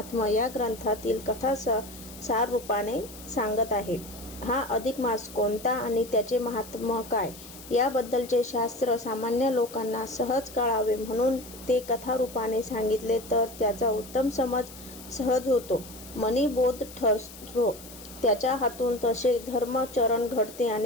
या ग्रंथातील कथा सार रूपाने सांगत आहे. हा अधिक मास कोणता आणि त्याचे महात्म्य काय याबद्दलचे शास्त्र सामान्य लोकांना सहज कळावे म्हणून ते कथा रूपाने सांगितले तर त्याचा उत्तम समज सहज होतो, मनीबोध ठरतो. त्याच्या हातून तसे धर्मचरण घडते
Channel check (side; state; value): left; noise; hiss, 17 dB below the sound